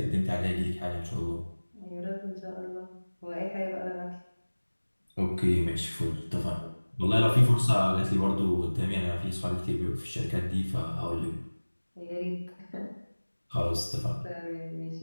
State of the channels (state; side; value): inverted; both; correlation -1.00